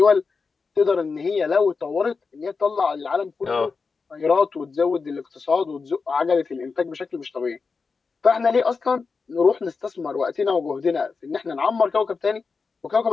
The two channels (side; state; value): right; quieter; 4.8 dB